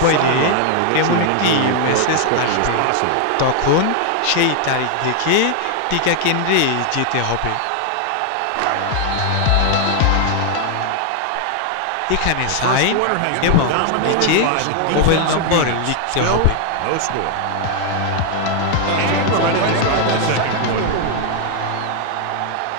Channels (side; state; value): both; different; correlation 0.00